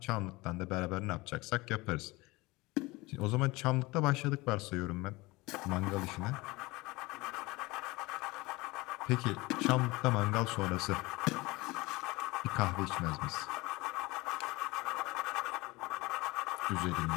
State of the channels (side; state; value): right; quieter; 22.2 dB